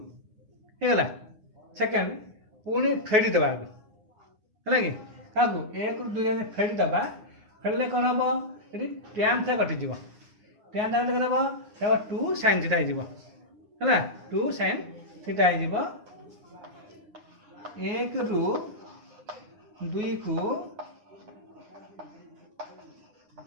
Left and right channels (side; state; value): left; late; 9.7 ms